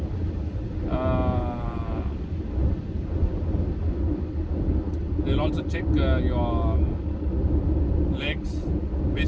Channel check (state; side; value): identical; both; correlation 1.00